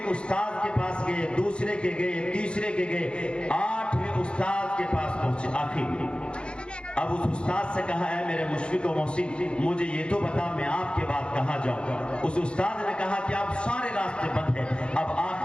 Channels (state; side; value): late; right; 0.055 ms